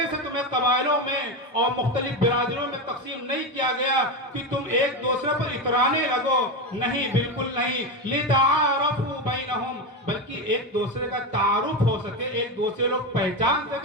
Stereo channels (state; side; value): normal; both; correlation 0.15